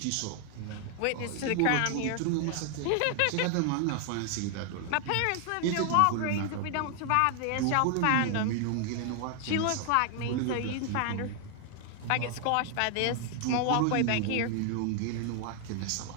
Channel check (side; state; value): both; different; correlation 0.00